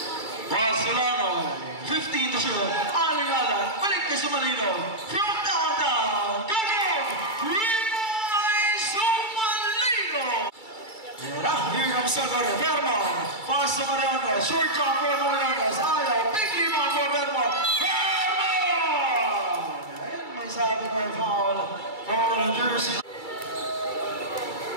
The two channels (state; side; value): late; right; 2.3 ms